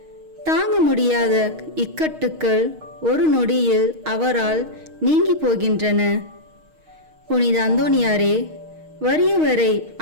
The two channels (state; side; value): late; left; 6.4 ms